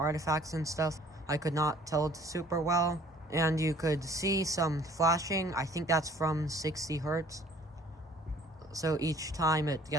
and stuff. I could not tell super well. And you could see some flashing. I think that's from 60 hertz. So each time it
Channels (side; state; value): both; normal; correlation 0.55